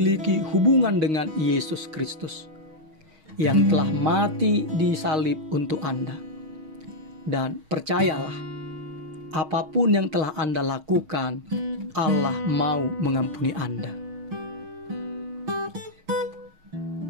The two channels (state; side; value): late; left; 6.4 ms